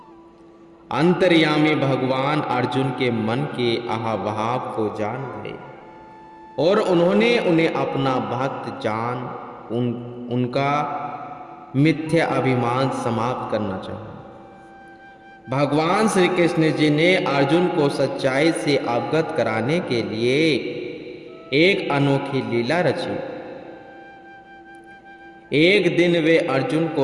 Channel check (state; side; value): identical; both; correlation 1.00